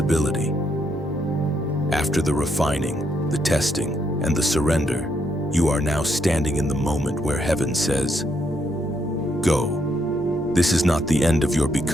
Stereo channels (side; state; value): left; noise; hum, 22 dB below the sound